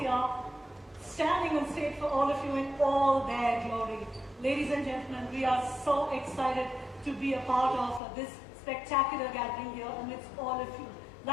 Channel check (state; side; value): drops out; right; at 8.0 s